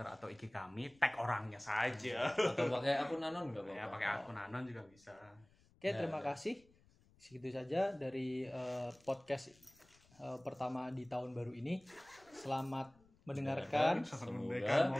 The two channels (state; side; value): noise; left; rumble, 30 dB below the sound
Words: atau IG kami, tag orangnya saja. Atau pakai akun anon nggak apa-apa. Ya pakai akun anon juga bisa. Oke, terima kasih. Segitu saja dari podcast pertama di tahun baru ini. Selamat mendengarkan.